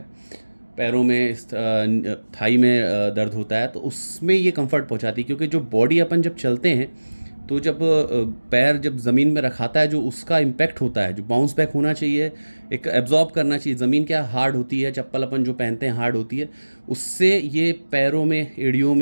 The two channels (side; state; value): both; inverted; correlation -1.00